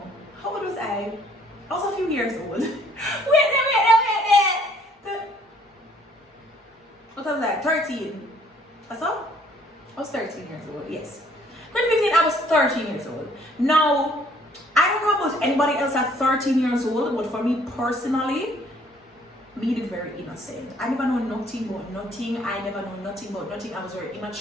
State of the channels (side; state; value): both; normal; correlation 0.61